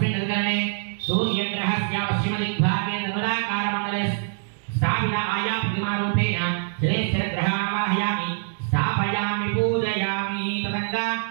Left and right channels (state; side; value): silent; left; digital silence